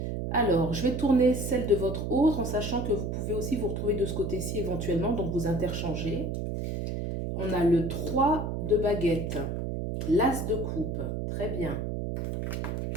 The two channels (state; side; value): noise; right; hum, 3 dB below the sound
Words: Alors, je vais tourner celle de votre autre en sachant que vous pouvez aussi vous retrouver de ce côté-ci éventuellement, donc vous interchangez. On a le 3 de baguette, l'as de coupe, très bien.